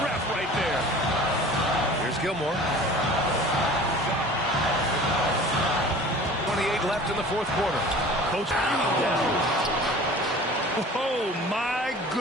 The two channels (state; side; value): normal; both; correlation 0.43